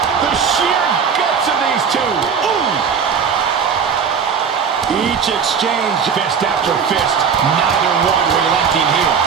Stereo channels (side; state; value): left; quieter; 6.6 dB